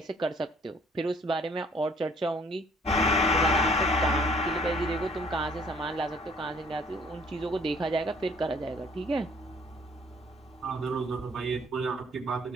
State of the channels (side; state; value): both; normal; correlation 0.59